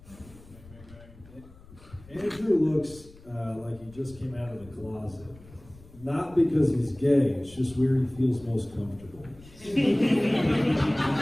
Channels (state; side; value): noise; left; rumble, 22 dB below the sound